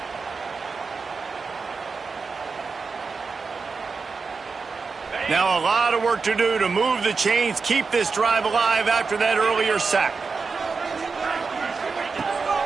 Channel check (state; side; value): quieter; left; 4.7 dB